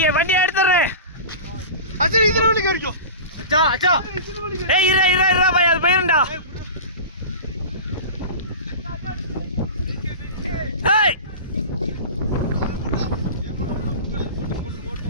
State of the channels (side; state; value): both; inverted; correlation -0.31